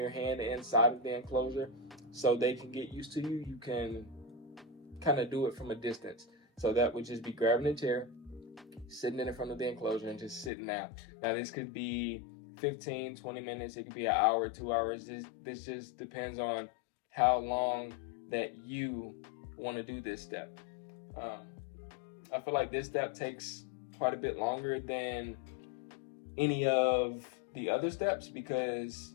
hand inside of the enclosure so they can get used to you, you can kind of do it from a distance. So that would just be grabbing a chair, sitting in front of the enclosure, and just sitting down. Now this could be 15, 20 minutes. It could be an hour, 2 hours. This just depends on how long that you want to do this step. I feel like this step takes quite a bit longer than any of the other steps, because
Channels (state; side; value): drops out; right; at 10.5 s